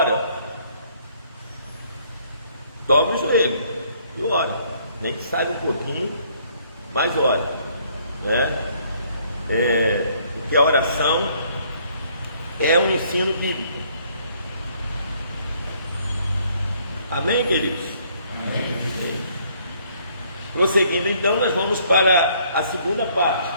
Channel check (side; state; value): both; inverted; correlation -0.64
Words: Dobra o joelho e ora. Nem que saia um pouquinho, mas ora. Né? Porque a oração é um ensino bíblico. Amém, queridos? Amém. Prosseguindo, então, nós vamos para a segunda parte.